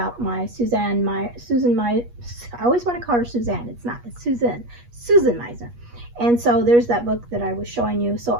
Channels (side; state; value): left; late; 8.4 ms